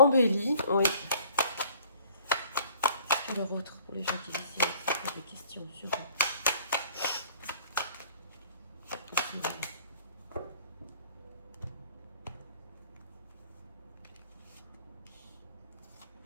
Oui. Alors autre pour les gens qui ici avec des questions sur ici, voilà.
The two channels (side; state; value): both; inverted; correlation -0.54